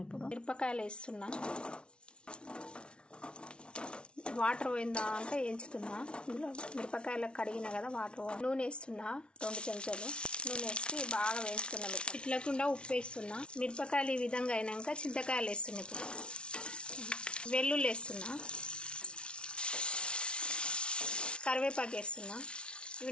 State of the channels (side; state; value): right; late; 0.057 ms